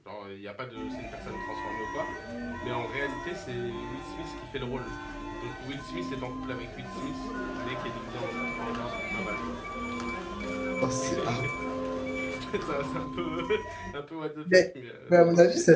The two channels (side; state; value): both; identical; correlation 1.00